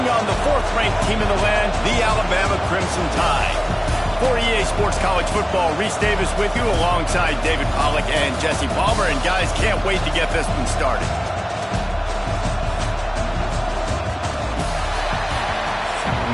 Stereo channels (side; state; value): both; identical; correlation 1.00